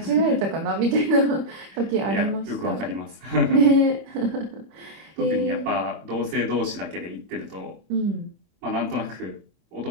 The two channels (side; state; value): left; late; 24 ms